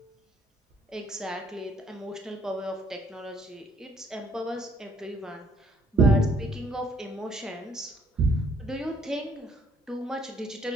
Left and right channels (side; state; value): both; normal; correlation 0.65